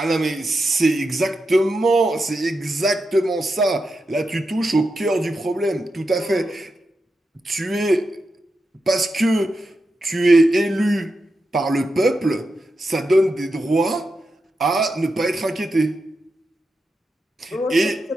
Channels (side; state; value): both; normal; correlation 0.88